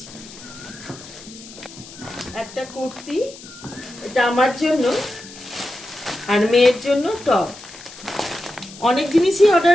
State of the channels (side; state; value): left; noise; hiss, 17 dB below the sound